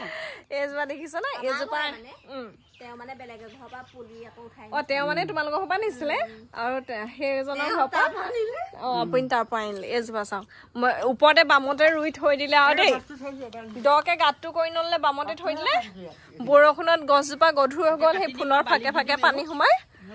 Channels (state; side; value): identical; both; correlation 1.00